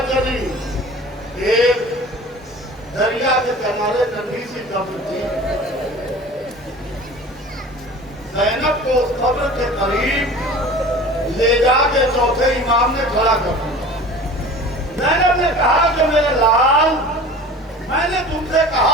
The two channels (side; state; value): both; normal; correlation 0.40